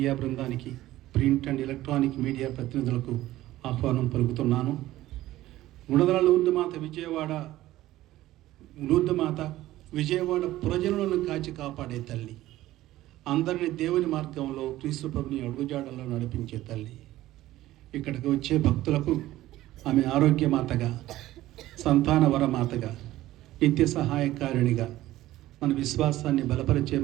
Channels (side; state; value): left; quieter; 15.5 dB